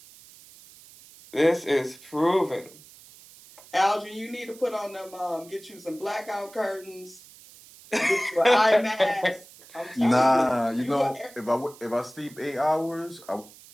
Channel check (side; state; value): right; noise; hiss, 22 dB below the sound